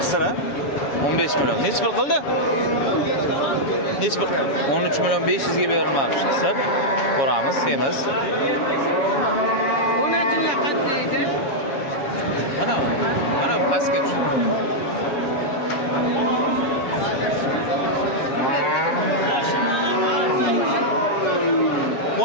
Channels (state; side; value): late; right; 7.3 ms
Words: Qisira 15 million. Necha pul qildi? Necha pul? 13 million 500 ga berilmoqchi. Qisir. Ko'ramiz, semiz. Mana pastga tush.